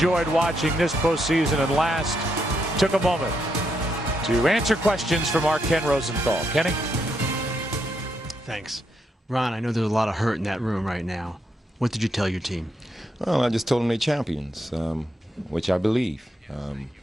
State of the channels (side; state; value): both; normal; correlation 0.79